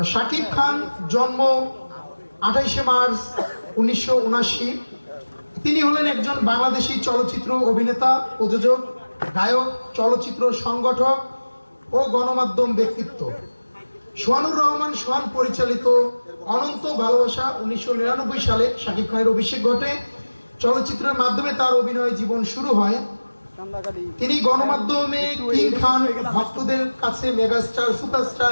শাকিব খান জন্ম 28শে মার্চ 1979। তিনি হলেন একজন বাংলাদেশি চলচ্চিত্র অভিনেতা, প্রযোজক, গায়ক, চলচ্চিত্র সংগঠক ও গণমাধ্যম ব্যক্তিত্ব। সোহানুর রহমান সোহান পরিচালিত অনন্ত ভালোবাসা 1999 সালে শাকিব খানের অভিষেক ঘটে। চলচ্চিত্রের মাধ্যমে তার অভিনয় জীবন শুরু হয়। তিনি গণমাধ্যমে কিং খান, ভক্তদের কাছে মেগাস্টার,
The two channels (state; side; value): inverted; both; correlation -1.00